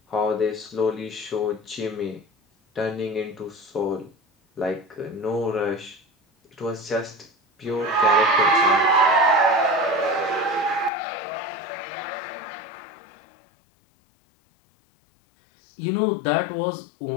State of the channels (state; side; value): drops out; right; at 10.9 s